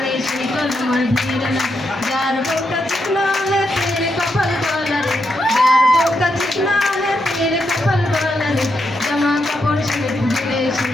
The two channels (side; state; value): both; normal; correlation 0.82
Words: সেই কলম আর ভিড় না যার বউটা চিকনা হে তেরে কপাল গলা রে যার বউটা চিকনা হে তেরে কপাল গলা রে জামা কাপড় সিমেন্ট দিলে